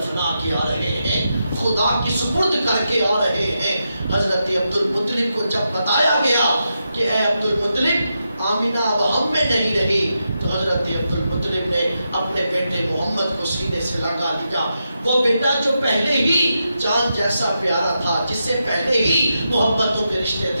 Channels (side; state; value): both; inverted; correlation -0.86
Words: کے آ رہے ہیں، خدا کی سپرد کر کے آ رہے ہیں۔ حضرت عبد المطلب کو جب بتایا گیا کہ اے عبد المطلب، آمنہ اب ہم میں نہیں رہی، تو حضرت عبد المطلب نے اپنے بیٹے محمد کو سینے سے لگا لیا۔ وہ بیٹا جو پہلے ہی چاند جیسا پیارا تھا، جس سے پہلے ہی محبتوں کے رشتے